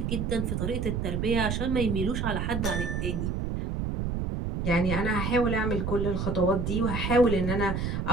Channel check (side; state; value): right; noise; rumble, 1 dB below the sound